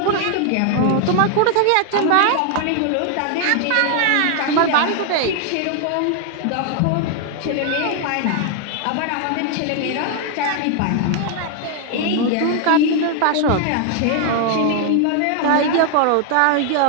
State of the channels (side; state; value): both; different; correlation 0.00